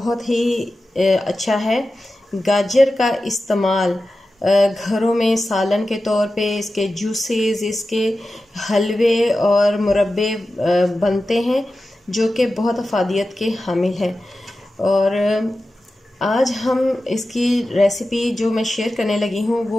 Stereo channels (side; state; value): both; normal; correlation 0.93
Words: ही अच्छा है। गाजर का इस्तेमाल घरों में सालन के तौर पे, इसके जूसेस, इसके हलवे और मुरब्बे बनते हैं जो कि बहुत अफादियत के हामिल हैं। और आज हम इसकी रेसिपी जो मैं शेयर करने लगी हूँ